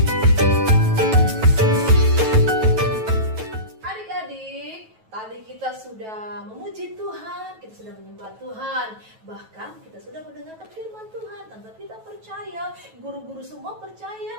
sudah memuji Tuhan, kita sudah menyembah Tuhan, bahkan kita sudah mendengarkan firman Tuhan. Tante kita percaya, guru-guru semua percaya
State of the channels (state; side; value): late; left; 9.2 ms